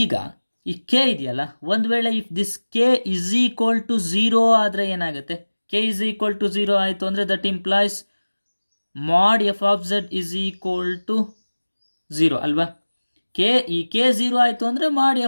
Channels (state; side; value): inverted; both; correlation -1.00